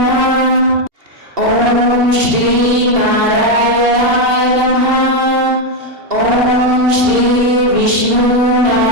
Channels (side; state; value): left; late; 2.7 ms